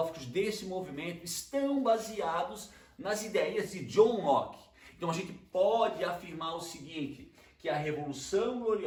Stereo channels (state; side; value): identical; both; correlation 1.00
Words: desse movimento estão baseados nas ideias de John Locke. Então a gente pode afirmar o seguinte, que a Revolução